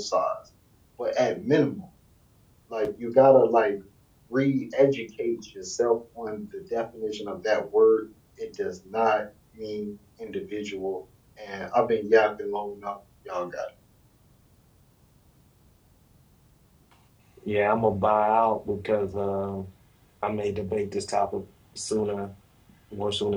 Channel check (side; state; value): both; identical; correlation 1.00